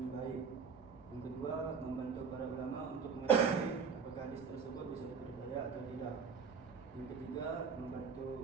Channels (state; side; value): quieter; left; 5.8 dB